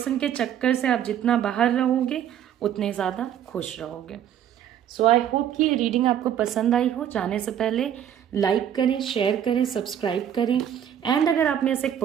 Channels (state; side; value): quieter; left; 9.9 dB